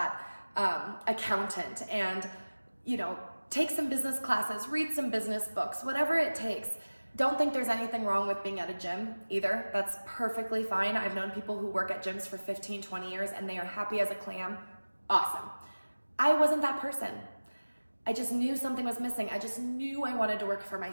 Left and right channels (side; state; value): both; inverted; correlation -1.00